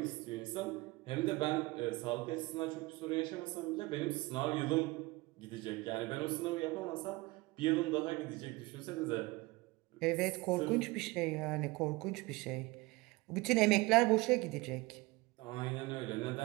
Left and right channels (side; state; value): left; quieter; 22.5 dB